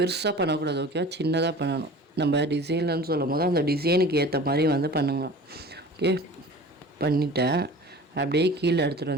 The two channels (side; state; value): both; normal; correlation 0.41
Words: பண்ணக்கூடாது. ஓகேவா? சின்னதாக பண்ணணும். நம்ம டிசைன்லன்னு சொல்லும் போது அந்த டிசைனுக்கு ஏற்ற மாதிரி வந்து பண்ணுங்க. ஓகே, பண்ணிட்டேன். அப்படியே கீழே எடுத்துகிட்டு